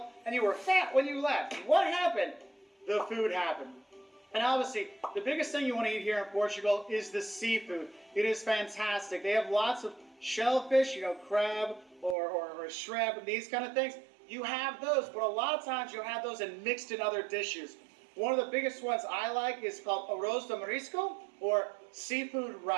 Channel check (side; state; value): left; drops out; at 12.2 s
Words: and you were fat when you left. What happened? The food happened. And obviously, the biggest thing you want to eat here in Portugal is the seafood. It is fantastic. They have lots of shellfish, you know, crab or shrimp and these kind of things. You have those, but a lot of times you'll have those and mixed in other dishes. One of the biggest ones I like is called arroz de marisco, or seafood